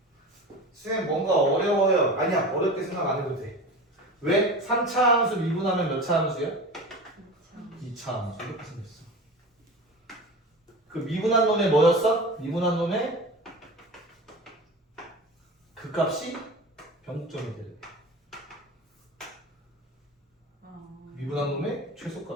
쌤 뭔가 어려워요. 아니야, 어렵게 생각 안 해도 돼. 왜? 3차 함수 미분하면 몇 차 함수야? 2차 함수. 이렇게 생겼어. 그 미분한 놈의 뭐였어? 미분한 놈의 그 값이 변곡점이 되래. 미분한 놈의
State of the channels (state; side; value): normal; both; correlation 0.32